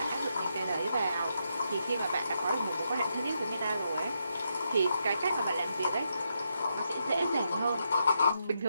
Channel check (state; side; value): inverted; both; correlation -0.81